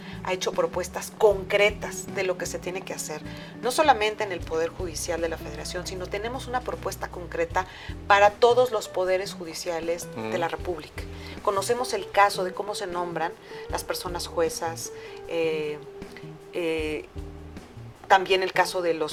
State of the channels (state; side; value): identical; both; correlation 1.00